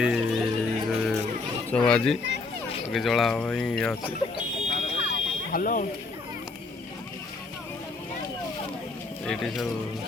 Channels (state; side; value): quieter; right; 3.8 dB